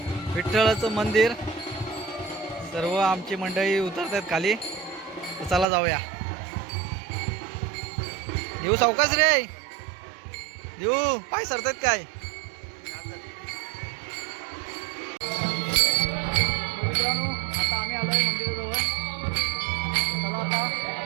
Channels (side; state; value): left; drops out; at 5.7 s